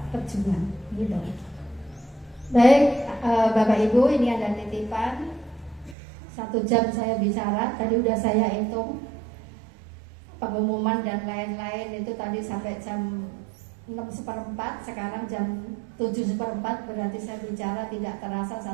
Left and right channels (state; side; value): drops out; left; at 6.0 s